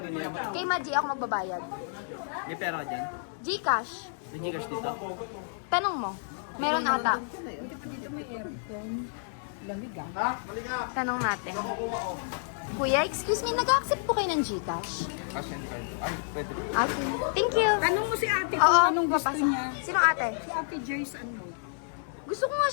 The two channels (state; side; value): silent; right; digital silence